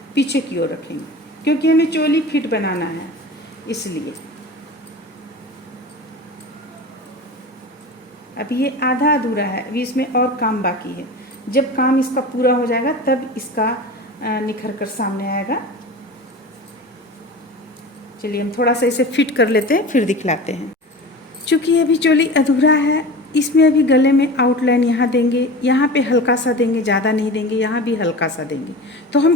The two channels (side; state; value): both; normal; correlation 0.33